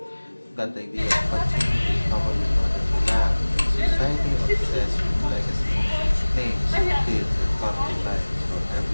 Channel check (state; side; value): inverted; both; correlation -1.00